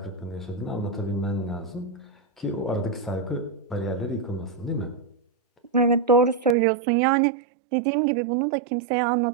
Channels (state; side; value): drops out; left; at 6.6 s